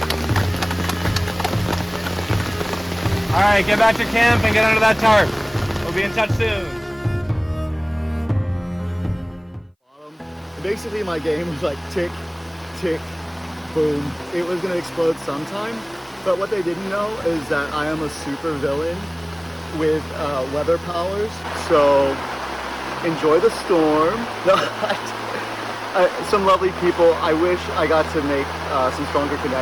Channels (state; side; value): identical; both; correlation 1.00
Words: Alright, get back to camp and get under that tarp. We'll be in touch soon. Basically, my game was like tick, tick, boom. It was gonna explode sometime. But what they didn't know is that I am a super villain with weather powers. So enjoy the storm. No, some lovely people. I wish I got to make some stronger